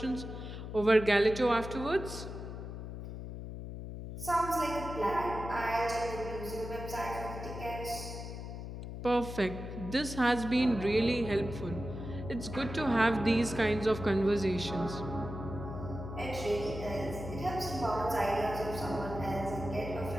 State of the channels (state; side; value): noise; left; hum, 8 dB below the sound